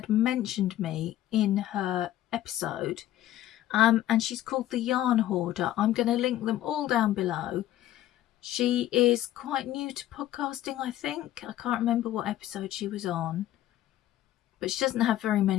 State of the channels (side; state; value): right; quieter; 13.5 dB